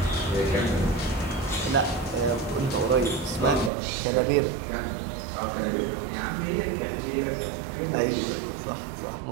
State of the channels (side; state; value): left; drops out; at 3.7 s